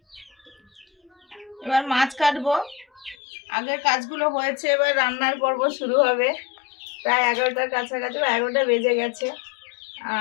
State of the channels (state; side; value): drops out; right; at 3.2 s